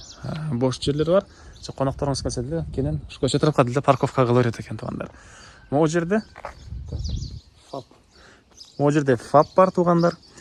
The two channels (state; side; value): identical; both; correlation 1.00